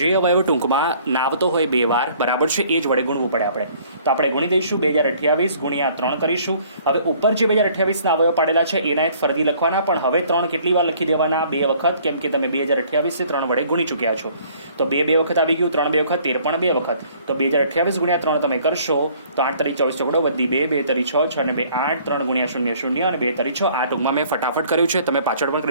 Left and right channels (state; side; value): inverted; both; correlation -0.57